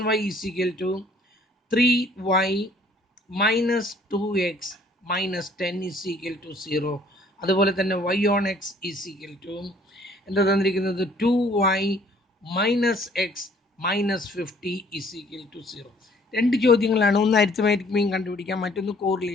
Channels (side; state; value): both; normal; correlation 0.59